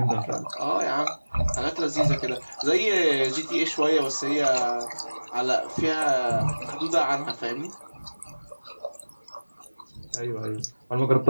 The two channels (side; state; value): both; inverted; correlation -1.00